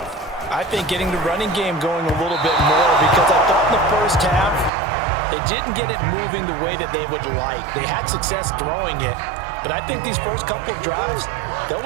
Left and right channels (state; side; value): drops out; left; at 4.7 s